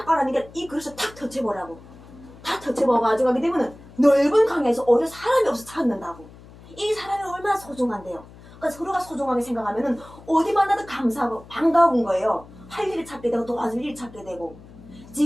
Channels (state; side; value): noise; left; hum, 20 dB below the sound